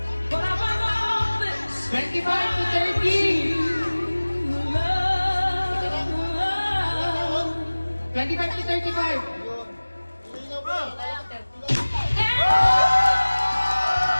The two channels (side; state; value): both; inverted; correlation -1.00